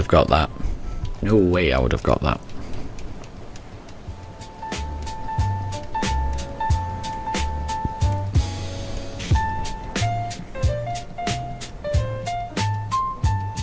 got that. No way I would have got that.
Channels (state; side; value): identical; both; correlation 1.00